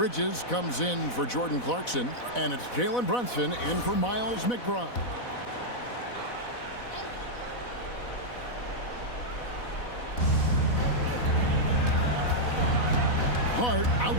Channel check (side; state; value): right; late; 4.0 ms